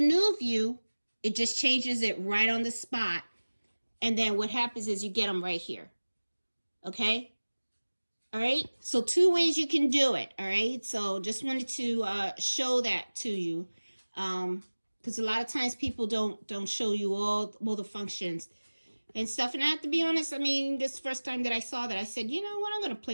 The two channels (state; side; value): inverted; both; correlation -1.00